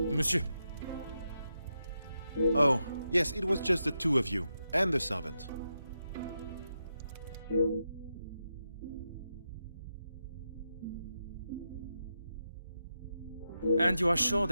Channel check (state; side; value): inverted; both; correlation -0.86